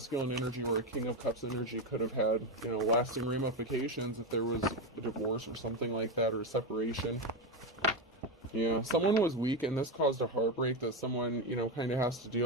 energy or a King of Cups energy could have had, you know, lasting ramifications if there was a divorce or something like that, or a separation. Yeah, someone was weak, and this caused a heartbreak that someone, kind of has to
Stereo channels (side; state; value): both; normal; correlation 0.12